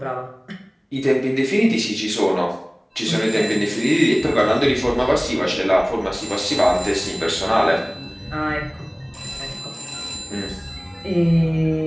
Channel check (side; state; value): both; identical; correlation 1.00